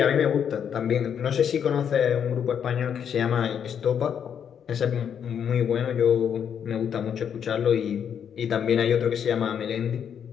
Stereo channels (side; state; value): right; quieter; 8.2 dB